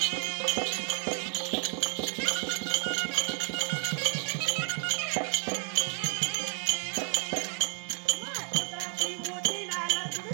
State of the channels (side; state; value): left; quieter; 40.0 dB